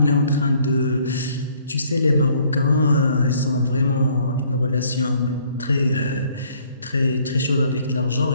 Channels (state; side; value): inverted; both; correlation -0.62